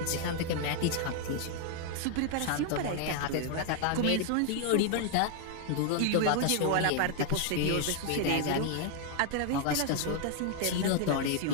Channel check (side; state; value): both; different; correlation 0.00